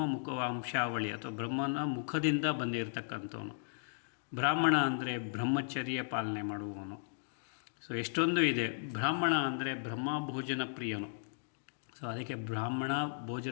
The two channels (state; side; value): silent; right; digital silence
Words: ಮುಖವಂಶಾವಳಿ ಅಥವಾ ಬ್ರಹ್ಮನ ಮುಖದಿಂದ ಬಂದಿರತಕ್ಕಂಥವನು, ಬ್ರಾಹ್ಮಣ ಅಂದರೆ ಬ್ರಹ್ಮಚರ್ಯ ಪಾಲನೆ ಮಾಡುವವನು. ಸೊ ಎಷ್ಟೊಂದು ಇದೆ. ಬ್ರಾಹ್ಮಣ ಅಂದರೆ ಬ್ರಹ್ಮ ಭೋಜನ ಪ್ರಿಯನು. ಸೊ ಅದಕ್ಕೆ ಬ್ರಾಹ್ಮಣ